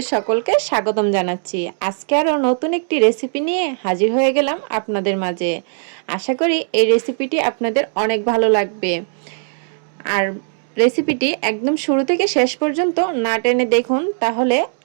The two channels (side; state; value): left; silent; 67 dB below the other